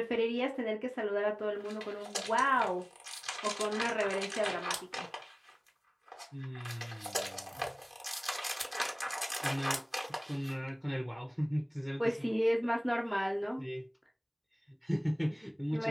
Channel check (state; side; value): identical; both; correlation 1.00